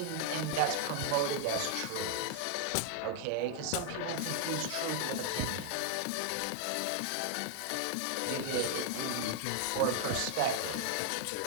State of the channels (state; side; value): different; both; correlation 0.00